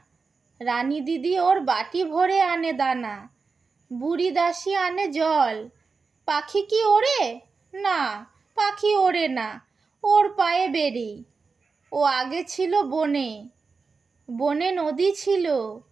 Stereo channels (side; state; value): left; quieter; 4.6 dB